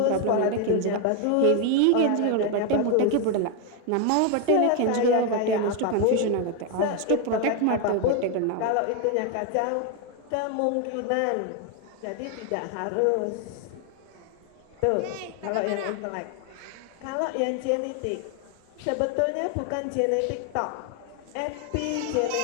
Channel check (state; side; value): different; both; correlation 0.01